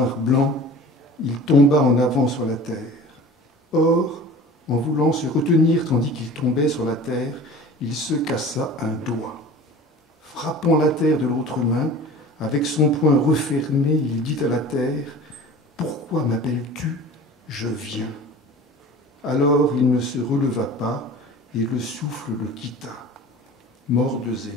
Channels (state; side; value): normal; both; correlation 0.40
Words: blancs, il tomba en avant sur la terre. Or, en voulant se retenir tandis qu'il tombait sur la terre, il se cassa un doigt. Frappant la terre de l'autre main, avec son poing refermé, il dit à la terre « Pourquoi m'appelles-tu ? Je viens. » Alors il ne se releva pas et le souffle le quitta. Mort de